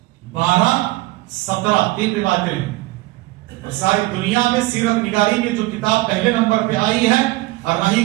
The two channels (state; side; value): quieter; left; 20.0 dB